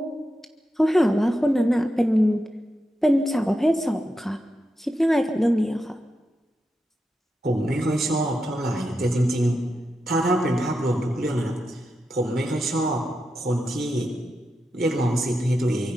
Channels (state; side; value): normal; both; correlation 0.88